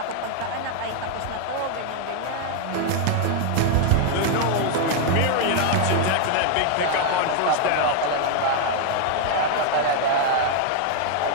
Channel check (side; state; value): both; different; correlation 0.00